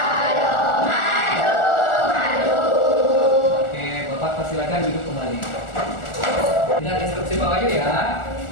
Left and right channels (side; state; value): right; late; 1.4 ms